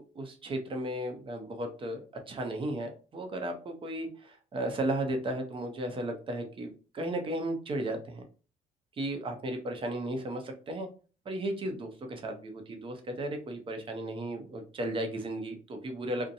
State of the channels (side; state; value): both; normal; correlation 0.57